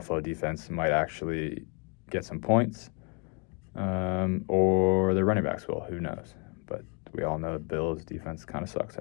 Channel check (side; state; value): right; quieter; 35.0 dB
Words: defense might actually get some points, or the running backs will. Who knows? But we all know the Bills' defense kind of sucks